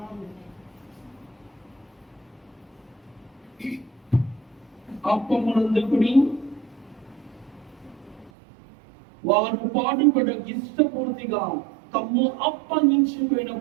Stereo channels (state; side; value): drops out; left; at 8.3 s